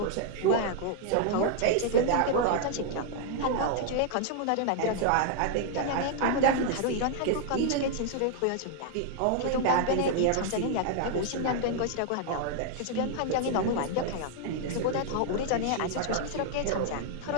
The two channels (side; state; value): both; different; correlation -0.01